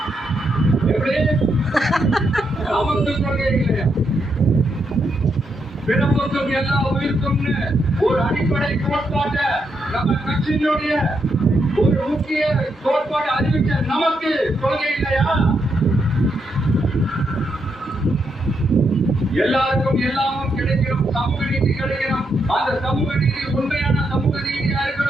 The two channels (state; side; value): normal; both; correlation 0.80